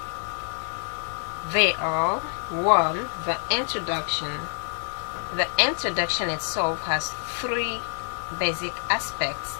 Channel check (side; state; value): right; silent; digital silence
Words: They are: 1. The introduction. The introduction itself has three basic aspects.